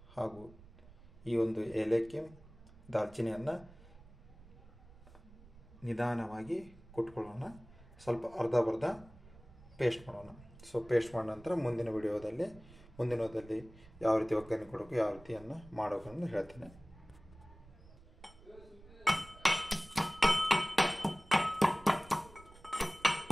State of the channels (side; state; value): right; noise; rumble, 21 dB below the sound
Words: ಹಾಗೂ ಈ ಒಂದು ಏಲಕ್ಕಿ, ದಾಲ್ಚಿನ್ನಿಯನ್ನು ನಿಧಾನವಾಗಿ ಕುಟ್ಕೊಳ್ಳೋಣ. ಸ್ವಲ್ಪ ಅರ್ಧ ಪೇಸ್ಟ್ ಮಾಡೋಣ. ಸೊ ಪೇಸ್ಟ್ ಮಾಡಿದ ನಂತರ ಮುಂದಿನ ವಿಡಿಯೋದಲ್ಲಿ ಯಾವ ರೀತಿ ಒಗ್ಗರಣೆ ಕೊಡಬೇಕು, ಯಾವ ರೀತಿಯನ್ನು ಮಾಡಬೇಕು ಅಂತ ಹೇಳ್ತೇನೆ.